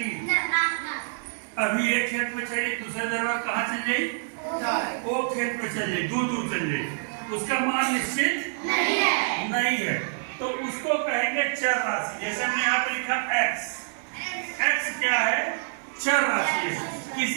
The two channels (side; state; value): left; silent; 58 dB below the other